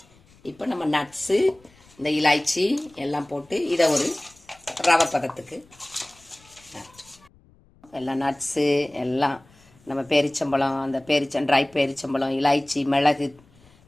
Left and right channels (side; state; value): left; noise; rumble, 29 dB below the sound